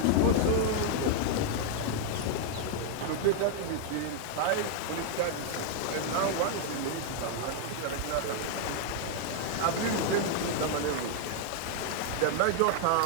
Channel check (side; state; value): both; different; correlation 0.00